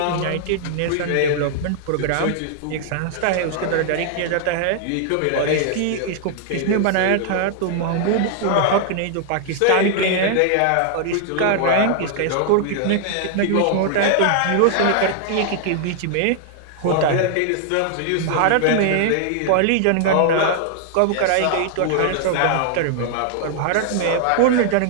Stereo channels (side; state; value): both; different; correlation -0.01